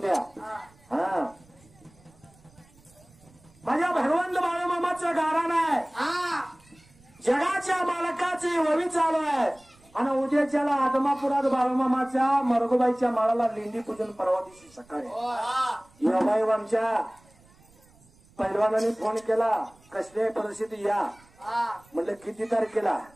हा माझ्या भगवंत बाळूमामाचं गारण आहे. जगाच्या मालकाची ववी चालू आहे. आणि उद्याच्याला आदमापुरात बाळूमामाच्या मरगोबाईच्या माळाला लेंडी पूजन परवा दिवशी सकाळी. योगायोग आमच्या पैलवानाने फोन केला कसल्या परिस्थिती या. म्हटलं किती तारखेला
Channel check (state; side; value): noise; right; rumble, 29 dB below the sound